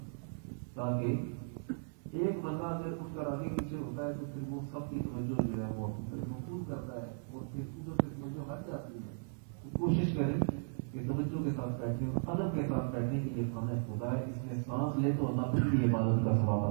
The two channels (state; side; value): silent; left; 54 dB below the other